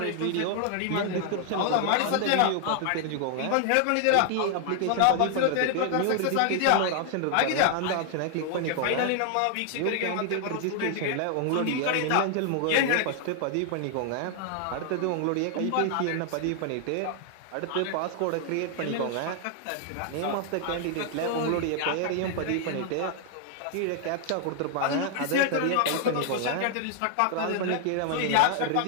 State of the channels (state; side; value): different; both; correlation 0.00